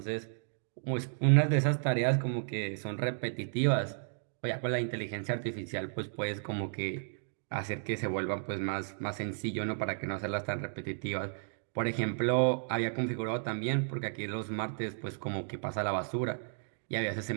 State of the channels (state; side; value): silent; left; digital silence